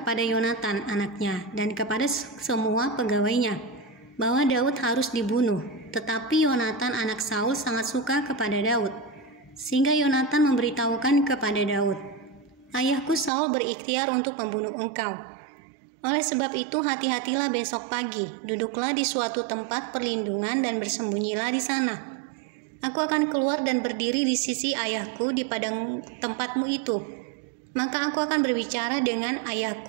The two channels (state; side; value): drops out; left; at 13.3 s